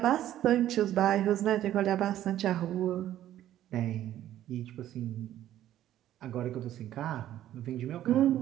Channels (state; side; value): quieter; left; 12.5 dB